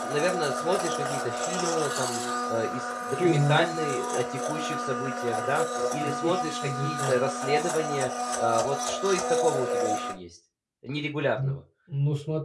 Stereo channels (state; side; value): identical; both; correlation 1.00